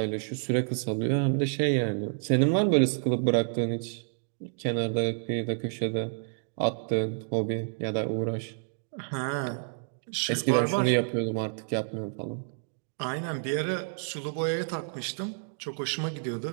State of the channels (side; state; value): left; silent; digital silence